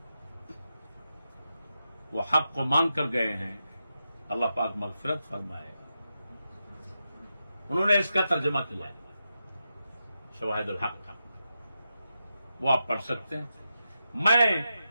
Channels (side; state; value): both; inverted; correlation -0.88